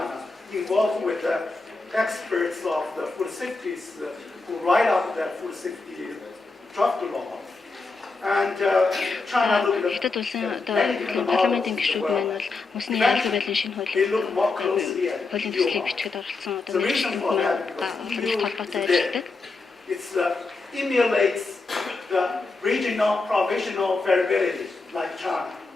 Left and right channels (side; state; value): right; quieter; 3.8 dB